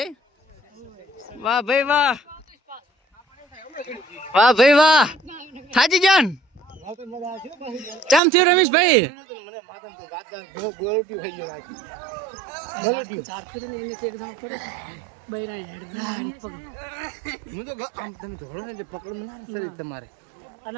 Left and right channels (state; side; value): drops out; left; at 8.2 s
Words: વાહ ભાઈ વાહ, વાહ ભાઈ વાહ. થાજી જાન ચમ થયું રમેશભાઈ? તમારે